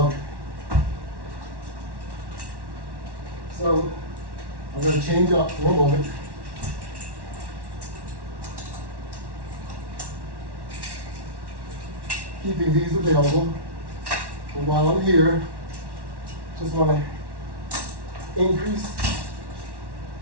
it. So I'm going to change up for a moment. Keeping these available. But while I'm here, just want to increase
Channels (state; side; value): late; left; 1.1 ms